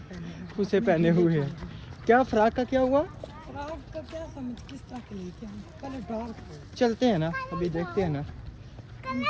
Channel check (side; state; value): both; identical; correlation 1.00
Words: पहने हैं? उसे पहने हुए हैं। क्या फ्रॉक का क्या हुआ? फ्रॉक का क्या समझ किस तरह के लिए क्या कलर डार्क है। चलते हैं ना, अभी देखते हैं ना।